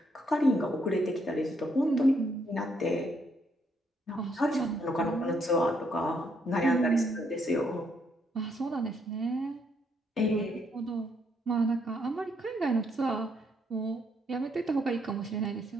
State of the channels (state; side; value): normal; both; correlation 0.73